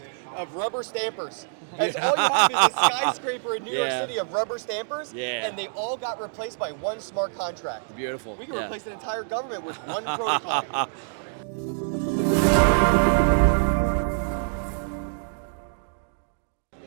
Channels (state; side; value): silent; left; digital silence